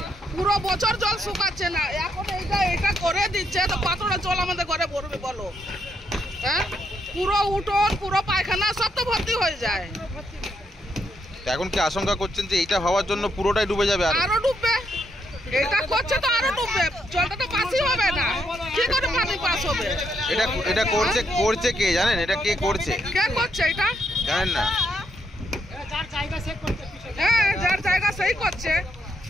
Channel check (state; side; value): normal; both; correlation 0.76